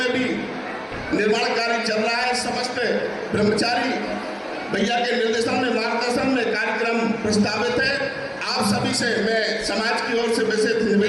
भी निर्माण कार्य चल रहा है। समस्त ब्रह्मचारी भैया के निर्देशन में, मार्गदर्शन में कार्यक्रम प्रस्तावित है। आप सभी से मैं समाज की ओर से विशेष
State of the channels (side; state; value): both; identical; correlation 1.00